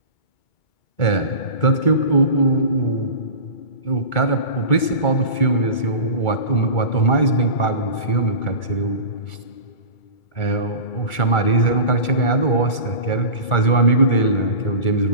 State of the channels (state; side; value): late; right; 2.2 ms